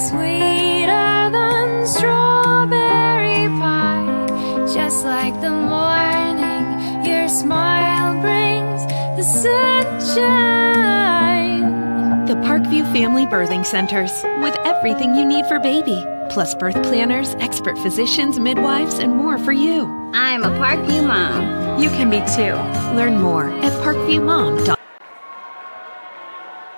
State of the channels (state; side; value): inverted; both; correlation -1.00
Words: than strawberry pie. Just like the morning, your smile brings the sunshine. The Parkview Family Birthing Centers with everything you need for baby, plus birth planners, expert physicians, midwives, and more for you. I'm a Parkview mom. You can be too. Learn more at parkviewmom.com.